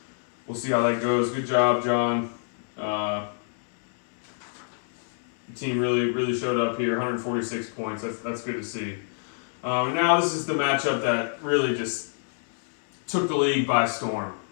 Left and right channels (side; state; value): right; silent; 60 dB below the other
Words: we'll see how that goes. Good job, John. The team really showed up here. 146 points. That's good to see. Now this is the matchup that really just took the league by storm.